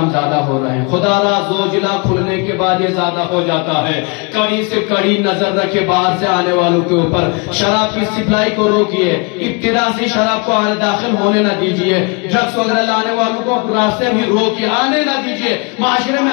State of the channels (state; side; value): quieter; right; 30.9 dB